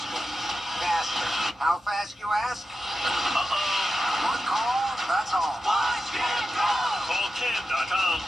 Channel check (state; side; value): normal; both; correlation 0.90